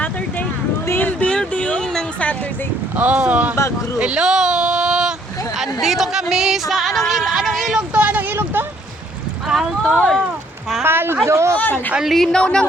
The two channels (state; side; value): normal; both; correlation 0.65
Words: group. Team building ng Saturday oh. Zumba group. Hello! Andito kami sa anong ilog to? Anong ilog to? Palto. Paldo. Ang linaw ng